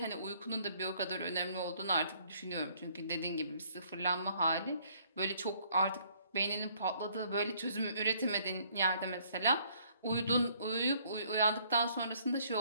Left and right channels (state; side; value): inverted; both; correlation -0.63